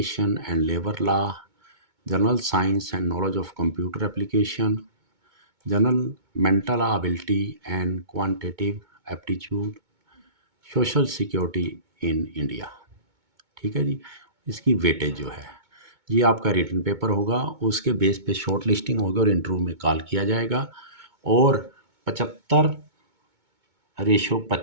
and labour law, general science and knowledge of computer application, general mental ability and quantitative aptitude, social security in India. ठीक है जी। इसकी weightage जो है, ये आपका written paper होगा, उसके base पे शॉर्ट लिस्टिंग होगी और इंटरव्यू में कॉल किया जाएगा। और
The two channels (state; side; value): late; left; 2.2 ms